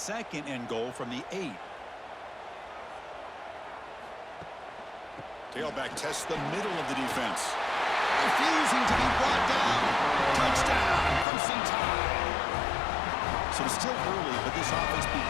and goal from the 8. Tailback tests the middle of the defense. Refusing to be brought down. Touchdown, Crimson Tide. So it's still early, but this offense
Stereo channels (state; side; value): drops out; right; at 11.2 s